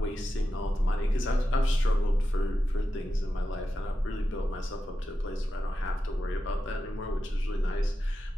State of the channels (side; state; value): both; normal; correlation 0.90